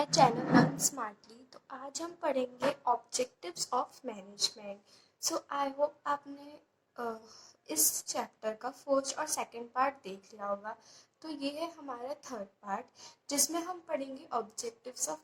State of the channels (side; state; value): both; identical; correlation 1.00